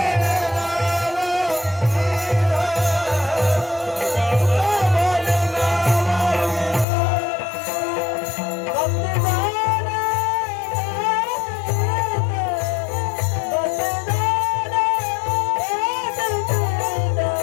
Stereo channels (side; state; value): right; drops out; at 6.9 s